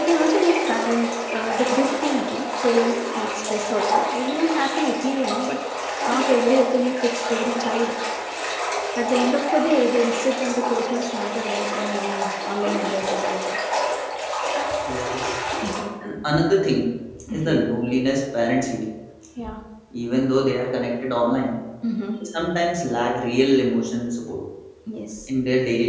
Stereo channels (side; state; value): both; identical; correlation 1.00